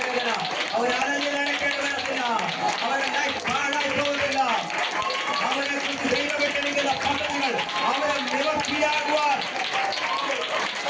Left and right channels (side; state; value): both; identical; correlation 1.00